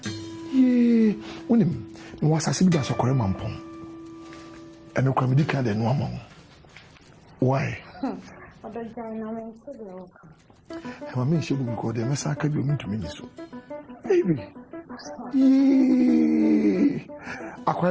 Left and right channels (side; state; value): both; identical; correlation 1.00